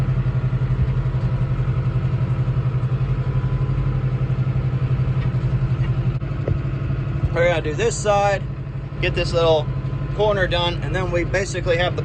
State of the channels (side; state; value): both; identical; correlation 1.00